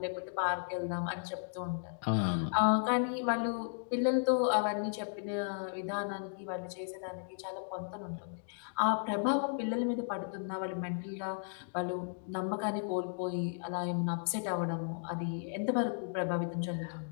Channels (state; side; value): silent; right; digital silence